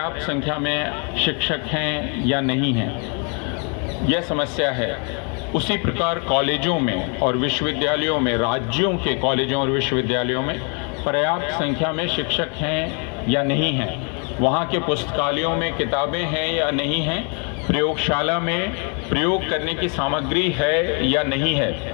संख्या में शिक्षक हैं या नहीं हैं, यह समस्या है। उसी प्रकार कॉलेजों में और विश्वविद्यालयों में, राज्यों के कॉलेजों और विश्वविद्यालयों में पर्याप्त संख्या में शिक्षक हैं या नहीं हैं, वहाँ के पुस्तकालयों में किताबें हैं या नहीं हैं, प्रयोगशाला में प्रयोग करने की सामग्री है या नहीं है,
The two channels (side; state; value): right; quieter; 37.6 dB